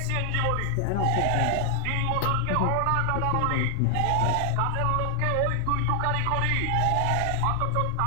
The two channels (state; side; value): different; both; correlation 0.00